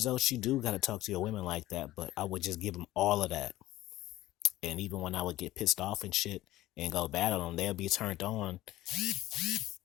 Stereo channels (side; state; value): right; quieter; 15.9 dB